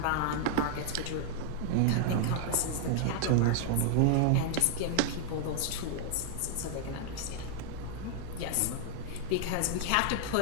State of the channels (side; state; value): both; different; correlation -0.01